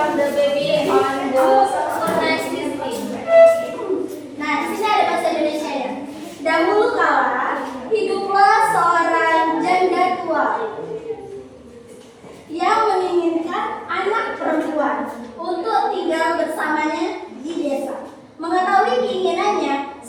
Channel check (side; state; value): both; identical; correlation 1.00